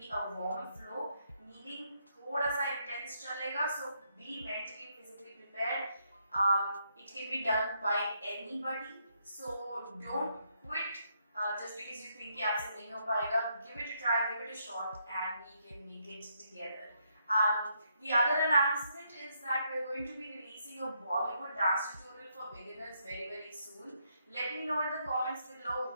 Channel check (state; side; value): inverted; both; correlation -0.76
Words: a warm flow. Meaning थोड़ा सा intense चलेगा, so be mentally, physically prepared. It can be done by anybody, so don't quit just because you think कि आपसे नहीं हो पाएगा. Give it a try, give it a shot, and we can make it together. The other announcement is that we're going to be releasing a Bollywood dance tutorial for beginners very soon. Let me know in the comments below